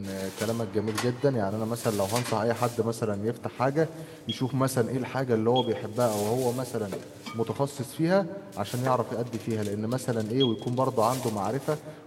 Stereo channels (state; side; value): identical; both; correlation 1.00